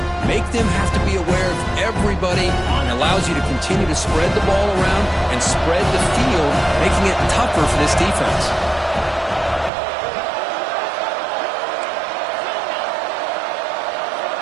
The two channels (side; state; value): left; drops out; at 9.7 s